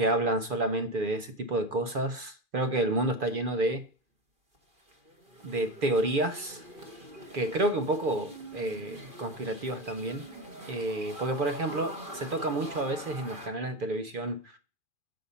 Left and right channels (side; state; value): left; late; 2.4 ms